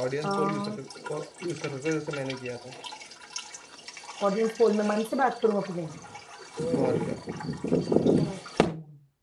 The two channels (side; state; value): both; identical; correlation 1.00